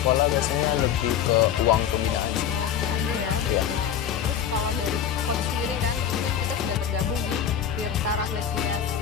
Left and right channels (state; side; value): quieter; right; 9.0 dB